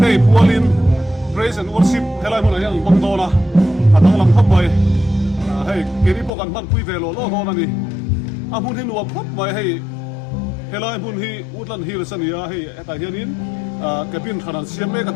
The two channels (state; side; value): drops out; right; at 6.3 s